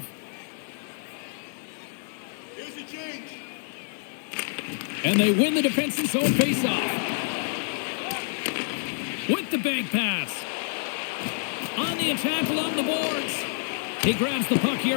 And they win the defensive zone face-off. With the bank pass. On the attack along the boards. He grabs the puck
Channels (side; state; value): right; silent; digital silence